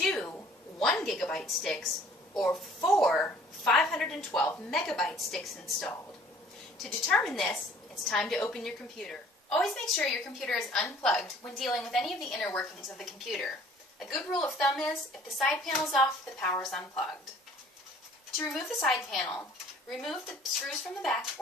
1 gigabyte sticks, or 4 512 megabyte sticks installed. To determine this, it's time to open your computer. Always make sure your computer is unplugged when dealing with any of the inner workings of the computer. A good rule of thumb is, if the side panel is off, the power is unplugged. To remove the side panel, remove the screws from the back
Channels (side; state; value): both; normal; correlation 0.54